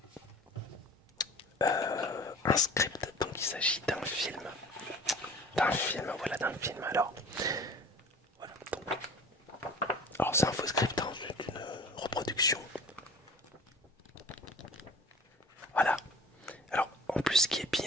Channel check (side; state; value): both; normal; correlation 0.43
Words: un script, donc il s'agit d'un film. Voilà, d'un film. Alors, voilà, donc... Alors c'est un faux script, hein, c'est une reproduction. Voilà. Alors en plus ce qui est